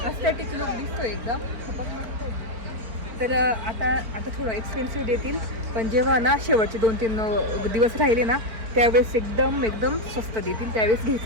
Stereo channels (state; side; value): late; left; 4.5 ms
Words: लुक दिसतो एकदम खूपच मस्त आहे. तर आता थोडं एक्सपेन्सिव्ह देतील पण जेव्हा ना शेवटचे 2-3 दिवस राहिले ना त्यावेळेस एकदम स्वस्त देतील त्यावेळेस